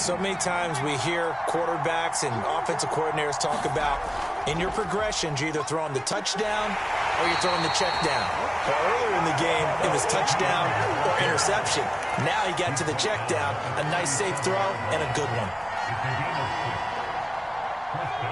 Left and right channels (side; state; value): both; identical; correlation 1.00